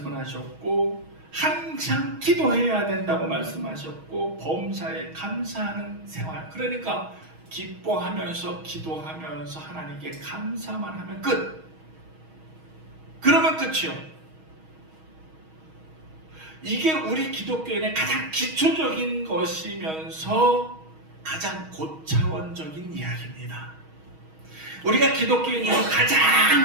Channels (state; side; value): late; left; 6.3 ms